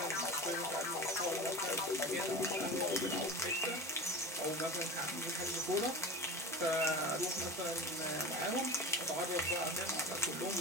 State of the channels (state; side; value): normal; both; correlation 0.31